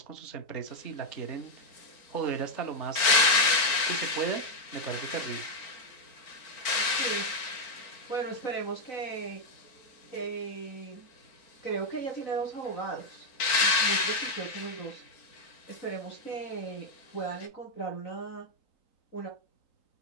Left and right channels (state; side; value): late; right; 3.9 ms